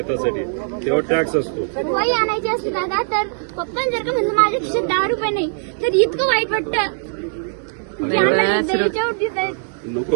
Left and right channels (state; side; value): silent; left; digital silence